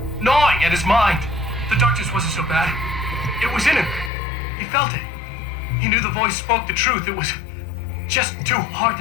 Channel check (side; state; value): right; drops out; at 4.1 s